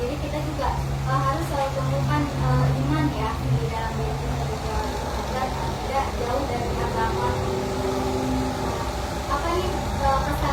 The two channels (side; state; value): both; identical; correlation 1.00